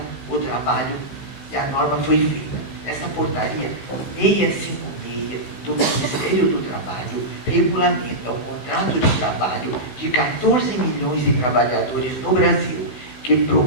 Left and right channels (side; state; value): right; late; 16 ms